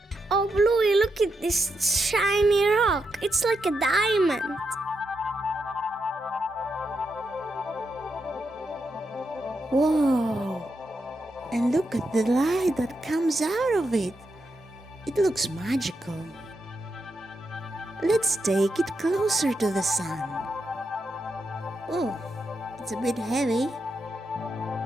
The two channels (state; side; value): normal; both; correlation 0.84